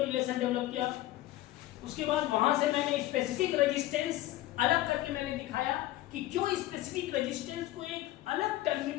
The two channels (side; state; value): right; quieter; 15.9 dB